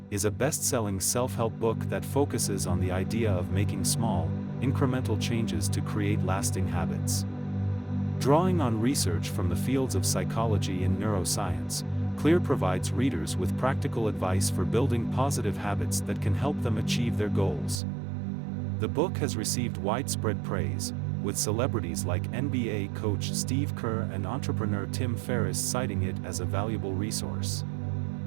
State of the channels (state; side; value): drops out; left; at 17.8 s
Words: is a best-selling self-help book that focuses on the idea of making small, incremental changes to create lasting habits. Drawing on research from the fields of psychology and neuroscience, Clear provides readers with practical advice for building positive habits that can help them achieve their goals. The book has received widespread praise, with celebrities like NBA coach Steve Kerr and entrepreneur Tim Ferriss citing it as a valuable resource.